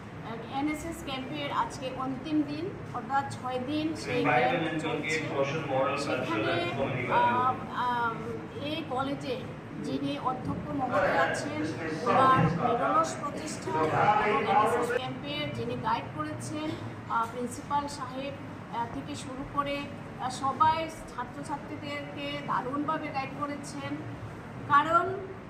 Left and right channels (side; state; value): both; identical; correlation 1.00